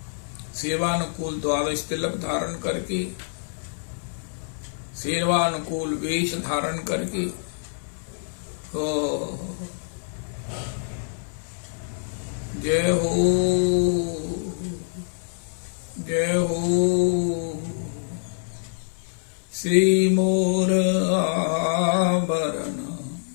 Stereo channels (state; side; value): silent; right; digital silence